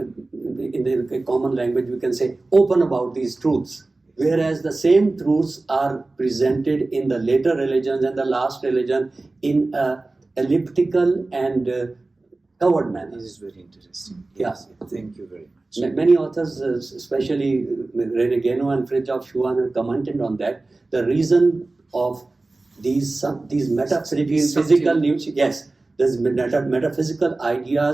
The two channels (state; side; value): quieter; left; 3.2 dB